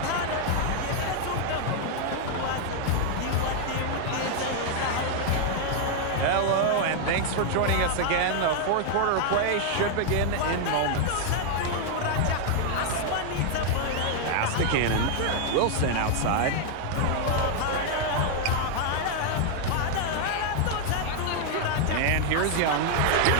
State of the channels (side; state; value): both; different; correlation 0.00